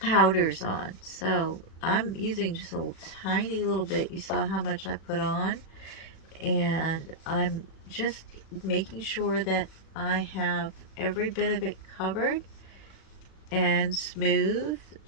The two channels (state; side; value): late; right; 37 ms